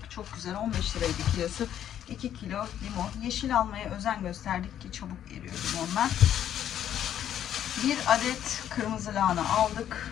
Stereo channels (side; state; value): right; quieter; 10.4 dB